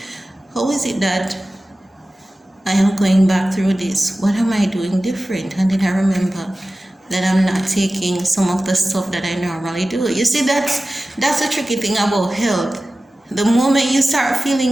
how is it that I am going back through this? What am I doing different? And then I remember that I'm not taking some of the stuff that I normally do. You see, that's the tricky thing about health. The moment you start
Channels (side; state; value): both; normal; correlation 0.96